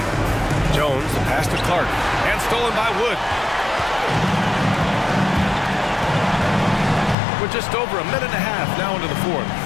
Jones, the pass to Clark. And stolen by Wood. We're just over a minute and a half now into the fourth.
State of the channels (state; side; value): drops out; right; at 7.2 s